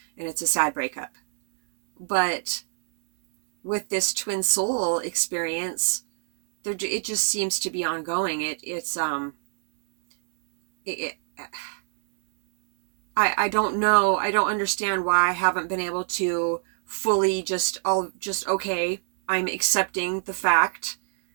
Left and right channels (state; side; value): silent; left; digital silence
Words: it's a sad breakup. But with this twin soul experience, it just seems to be ongoing. I don't know. I don't understand why I haven't been able to fully okay, I'm accepting the fact